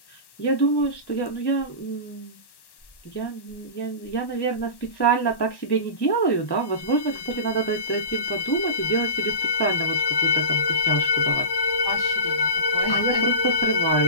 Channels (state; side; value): late; right; 1.1 ms